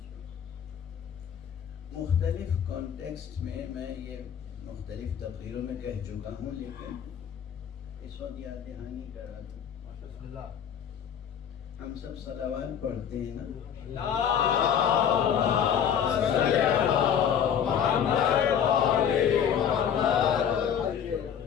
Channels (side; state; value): right; quieter; 8.5 dB